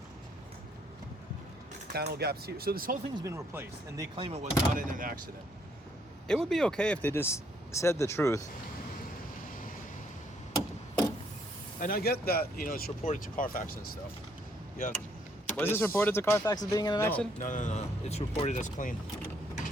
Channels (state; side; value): normal; both; correlation 0.69